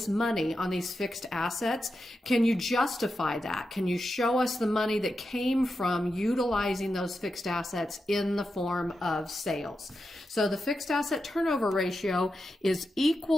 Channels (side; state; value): both; normal; correlation 0.88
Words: money on these fixed assets. Can you justify that? Can you show us the money that came from utilizing those fixed assets in the form of sales? So the fixed asset turnover ratio is